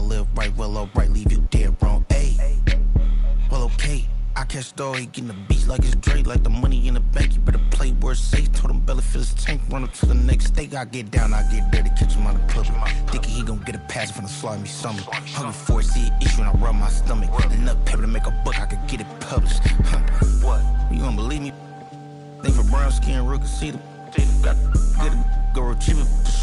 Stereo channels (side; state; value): both; identical; correlation 1.00